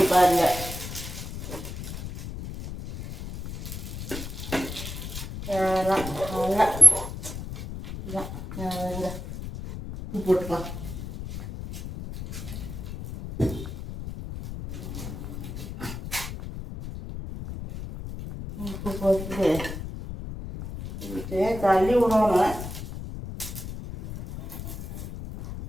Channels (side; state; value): left; noise; rumble, 8 dB below the sound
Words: பாருங்க. போட்டுக்கலாம். உப்பு போட்டு தள்ளி விடணும்.